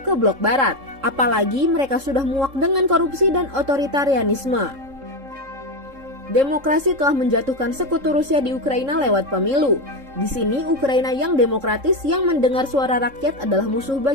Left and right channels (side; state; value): left; late; 3.7 ms